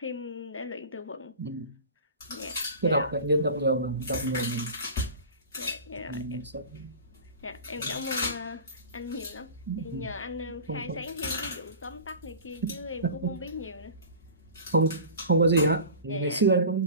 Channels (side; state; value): both; inverted; correlation -0.36